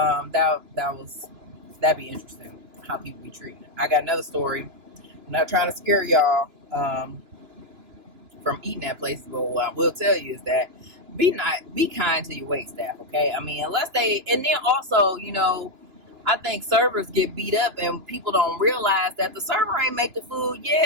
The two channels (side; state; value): left; late; 2.9 ms